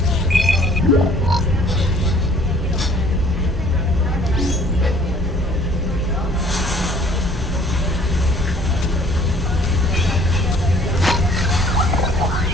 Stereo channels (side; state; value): both; normal; correlation 0.56